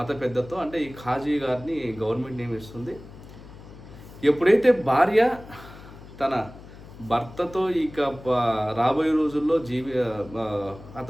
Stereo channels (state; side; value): noise; left; hum, 18 dB below the sound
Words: పెద్దతో, అంటే ఈ ఖాజీ గారిని గవర్నమెంట్ నియమిస్తుంది. ఎప్పుడైతే భార్య తన భర్తతో ఇక రాబోయే రోజుల్లో